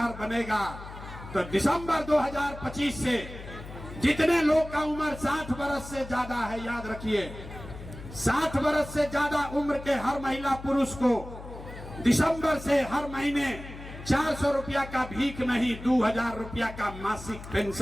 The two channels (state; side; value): noise; left; hum, 13 dB below the sound